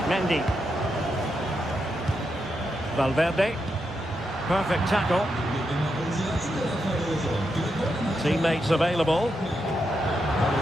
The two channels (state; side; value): normal; both; correlation 0.84